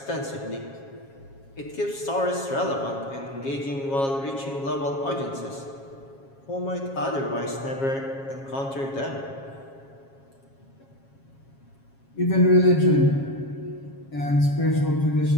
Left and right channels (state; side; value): late; right; 7.3 ms